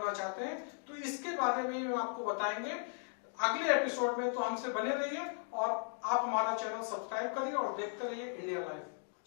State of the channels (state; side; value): silent; right; 53 dB below the other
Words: चाहते हैं तो इसके बारे में हम आपको बताएंगे अगले एपिसोड में। तो हमसे बने रहिए और आप हमारा चैनल सब्सक्राइब करिए और देखते रहिए इंडिया लाइव।